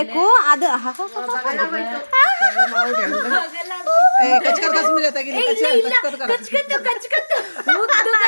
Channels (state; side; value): inverted; both; correlation -1.00